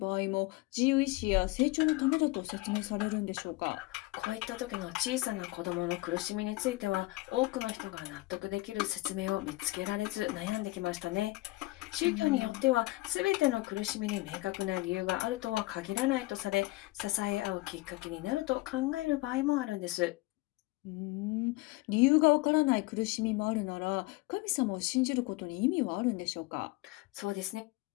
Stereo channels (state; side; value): quieter; right; 21.2 dB